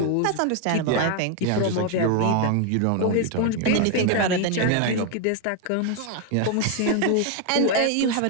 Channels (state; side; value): different; both; correlation 0.01